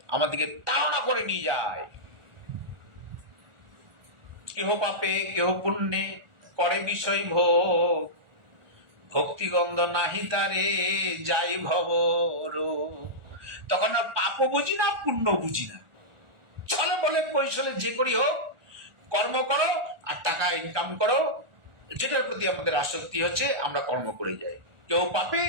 আমাদেরকে তাড়না করে নিয়ে যায়। কেহ পাপে কেহ পুণ্যে করে বিষয় ভোগ, ভক্তিগন্ধ নাহি তারে যাই ভবর। তখন পাপও বুঝি না, পুণ্য বুঝি না, চলে বলে কৌশলে যে করি হোক, কর্ম করো আর টাকা ইনকাম করো, যেটার প্রতি আমাদের আসক্তি হচ্ছে আমরা কর্ম করে যাই, কেউ পাপে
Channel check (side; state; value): left; late; 1.4 ms